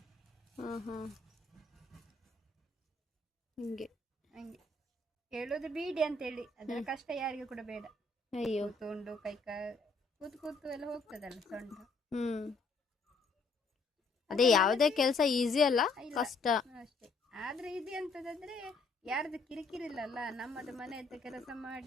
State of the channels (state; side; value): quieter; right; 3.7 dB